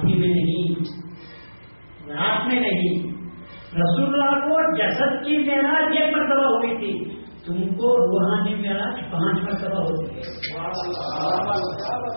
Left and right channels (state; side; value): inverted; both; correlation -1.00